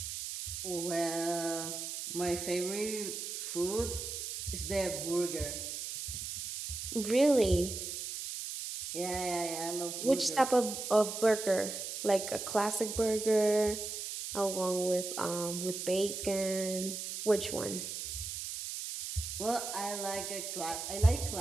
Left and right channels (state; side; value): noise; right; hiss, 6 dB below the sound